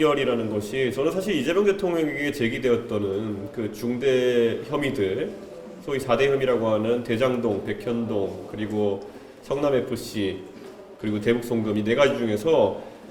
것이 저는 사실 이재명 대통령에게 제기되었던 그 중대 혐의들, 소위 4대 혐의라고 하는 대장동, 백현동, 그리고 성남FC, 그리고 대북송금 이 네 가지 중에서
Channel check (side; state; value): both; identical; correlation 1.00